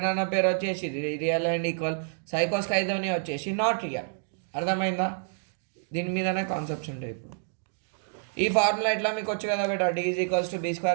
అన్న పేరు వచ్చేసి రియల్ అండ్ ఈక్వల్, సైకోస్ ఖైదోని వచ్చేసి నాట్ రియల్. అర్థమైందా? దీని మీదనే కాన్సెప్ట్స్ ఉంటాయి. ఇప్పుడు ఈ ఫార్ములా ఎట్లా మీకు వచ్చు కదా బేటా, D is equals to B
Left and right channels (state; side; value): silent; left; digital silence